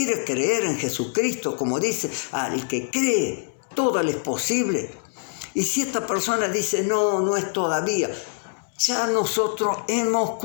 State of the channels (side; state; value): right; silent; 62 dB below the other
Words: creer en Jesucristo? Como dice, al que cree, todo le es posible. Y si esta persona dice, no es todavía, ya nosotros hemos